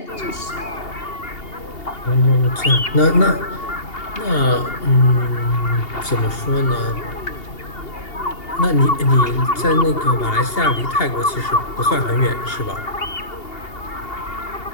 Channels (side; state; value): right; late; 2.8 ms